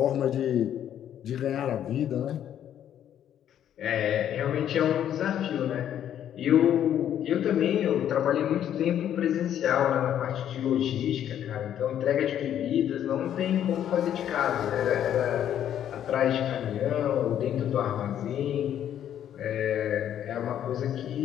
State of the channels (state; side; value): quieter; right; 10.3 dB